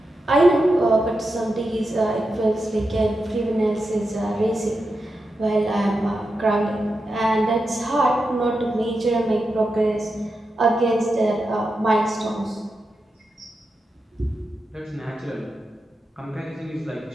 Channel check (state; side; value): normal; both; correlation 0.88